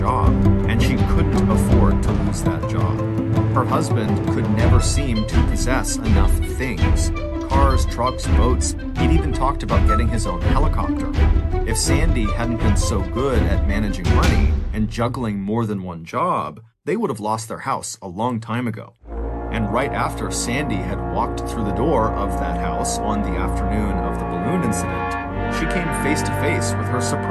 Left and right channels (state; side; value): identical; both; correlation 1.00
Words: and she couldn't afford to lose that job. Her husband could never seem to possess enough things. Cars, trucks, boats, he'd even talked about getting his own helicopter. If Sandy hadn't been so good at managing money and juggling more than one job, they would have lost their house a long time ago. And right after Sandy had walked through the door of that house on the afternoon of the balloon incident, she came face to face with her